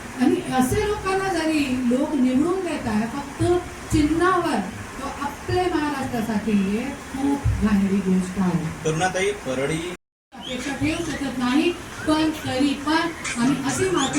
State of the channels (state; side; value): identical; both; correlation 1.00